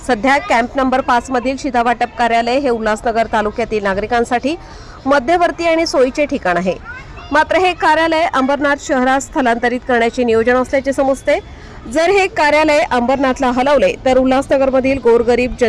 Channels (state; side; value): identical; both; correlation 1.00